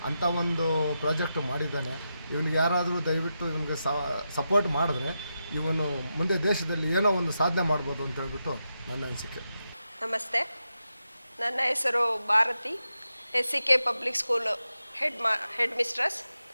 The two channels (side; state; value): both; inverted; correlation -0.88